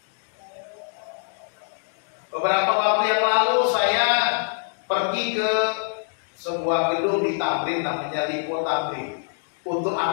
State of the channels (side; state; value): right; silent; digital silence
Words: Beberapa waktu yang lalu saya pergi ke sebuah gedung di Tamrin namanya Lipo Tamrin untuk